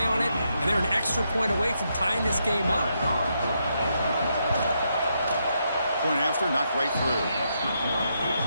on it, and they're an extra point away from tying this game up. Point after, knocked right through.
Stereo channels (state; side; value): inverted; both; correlation -0.80